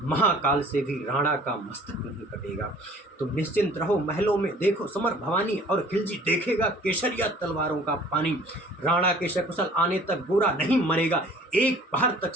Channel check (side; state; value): both; normal; correlation 0.51